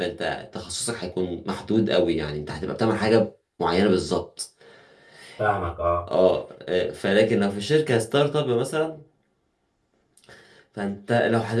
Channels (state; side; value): identical; both; correlation 1.00